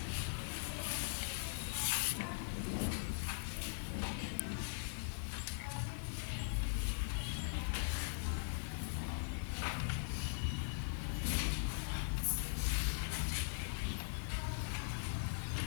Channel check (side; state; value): right; silent; digital silence